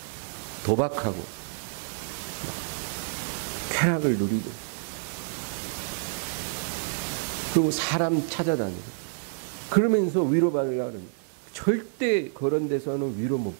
도박하고 쾌락을 누리고 그리고 사람 찾아다니고 그러면서 위로받으려고 하는 절대 그런 데서는 위로 못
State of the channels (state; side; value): silent; left; digital silence